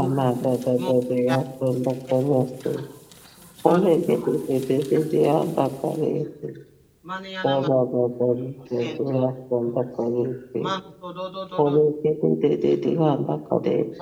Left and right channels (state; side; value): identical; both; correlation 1.00